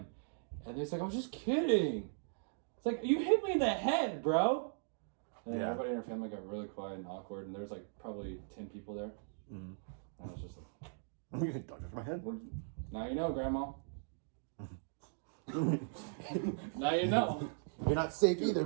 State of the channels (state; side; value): silent; left; digital silence